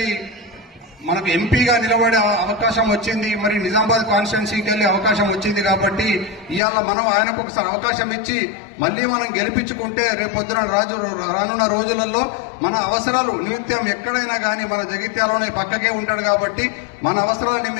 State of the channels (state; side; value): drops out; right; at 6.6 s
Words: మనకు ఎంపీగా నిలబడే అవకాశం వచ్చింది, మరి నిజామాబాద్ కాన్స్టిట్యున్సీకి వెళ్లే అవకాశం వచ్చింది కాబట్టి ఇవాళ మనం ఆయనకు ఒకసారి అవకాశం ఇచ్చి మళ్ళీ మనం గెలిపించుకుంటే రేపొద్దున రానున్న రోజులలో మన అవసరాలు నిమిత్తం ఎక్కడైనా కానీ మన జగిత్యాలలోనే పక్కకే ఉంటాడు కాబట్టి మన అవసరాల